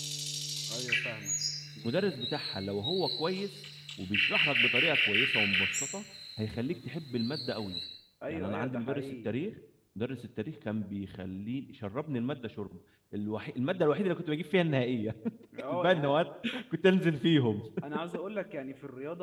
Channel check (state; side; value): identical; both; correlation 1.00